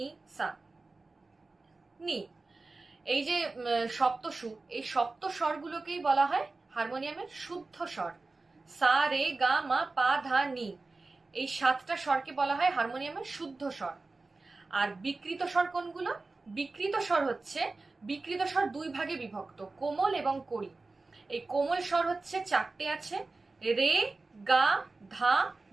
সা নি, এই যে সপ্তস্বর, এই সপ্ত স্বরগুলোকেই বলা হয় হারমোনিয়ামের শুদ্ধ স্বর। সা রে গা মা পা ধা নি, এই সাতটা স্বরকে বলা হয় হারমোনিয়ামের শুদ্ধ স্বর। আর বিকৃত স্বর কোনগুলো? বিকৃত স্বর দুই ভাগে বিভক্ত, কোমল এবং কড়ি। এই কোমল স্বর হচ্ছে চারটে আছে, রে গা ধা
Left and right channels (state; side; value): quieter; left; 3.6 dB